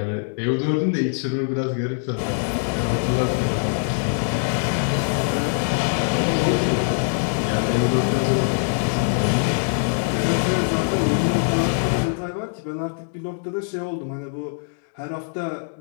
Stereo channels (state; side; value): silent; right; digital silence